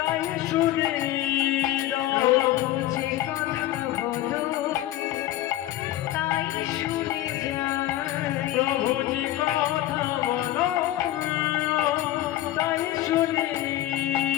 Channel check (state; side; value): quieter; right; 14.1 dB